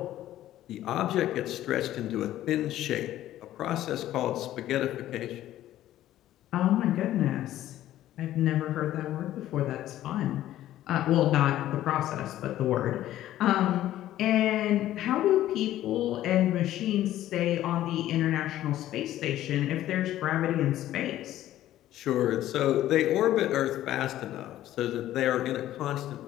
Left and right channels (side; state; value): right; quieter; 13.5 dB